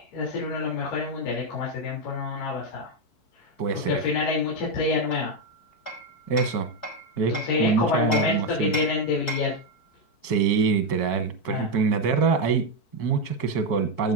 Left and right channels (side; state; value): right; late; 4.6 ms